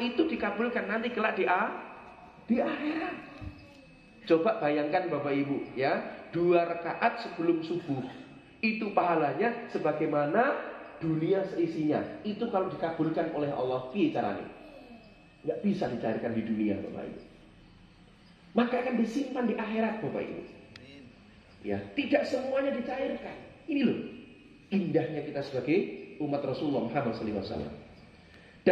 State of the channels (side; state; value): both; identical; correlation 1.00